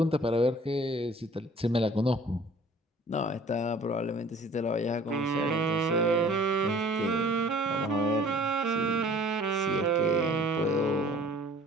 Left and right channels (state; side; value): normal; both; correlation 0.51